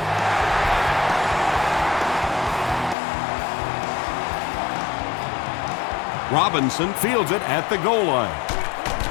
Robinson fields it at the goal line.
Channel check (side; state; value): right; drops out; at 3.0 s